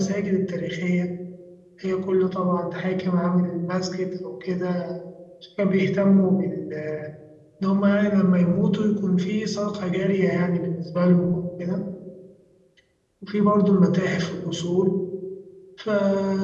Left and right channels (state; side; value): identical; both; correlation 1.00